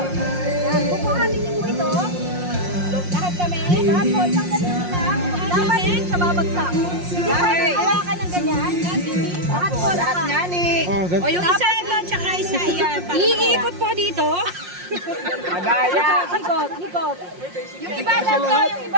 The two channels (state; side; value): late; left; 5.6 ms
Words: Dapat po, isang ganito lang. Dapat hindi siya babagsak. Hindi pwede hawakan ng ganyan. Lahat po, lahat. O yung isa ito, tsaka isa yan. Iikot po dito. Madaya. Ikot, ikot. Yung iba lang to, yung